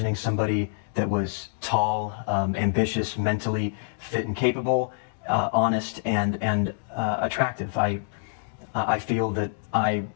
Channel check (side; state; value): right; silent; digital silence